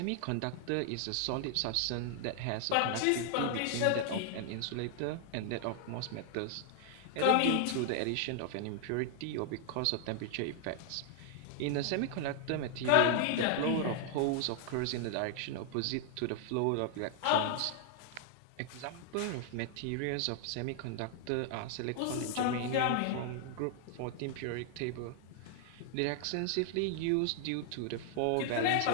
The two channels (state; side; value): different; both; correlation 0.00